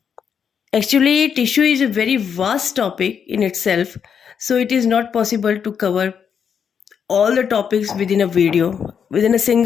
Actually, tissue is a very vast topic in itself, so it is not possible to cover all the topics within a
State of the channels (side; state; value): right; quieter; 7.3 dB